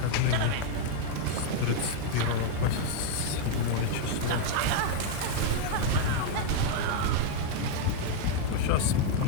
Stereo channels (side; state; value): both; different; correlation 0.00